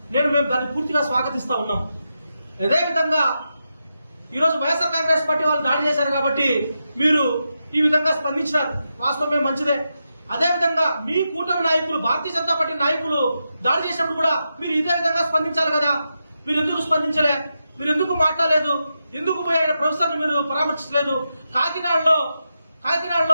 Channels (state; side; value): inverted; both; correlation -0.87